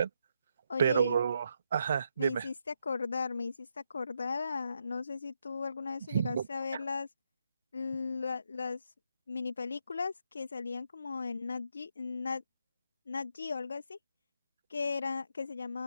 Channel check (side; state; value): both; inverted; correlation -0.80